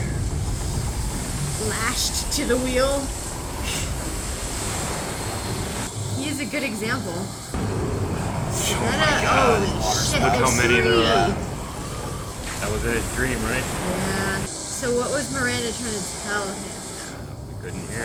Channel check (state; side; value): identical; both; correlation 1.00